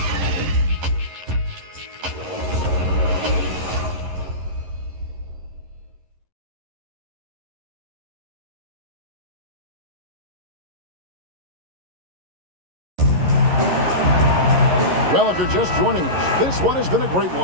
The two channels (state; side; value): late; left; 11 ms